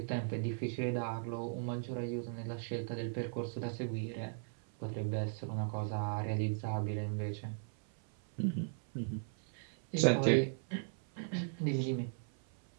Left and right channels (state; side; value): silent; left; 53 dB below the other